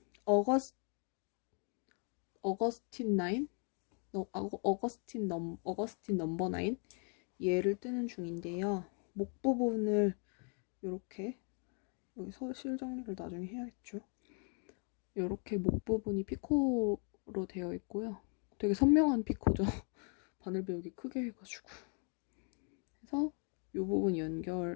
어거스틴 9? 어거스틴 넘버 9? 얘를 뜨는 중인데요. 목 부분을 이렇게 여기 실 정리를 나중에 해야겠죠. 이렇게 목 부분이 피코로 되어 있고요. 되게 선명한 피코죠. 바늘 배우기 크게 해가지고 해서 이 부분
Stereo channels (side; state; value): right; quieter; 39.6 dB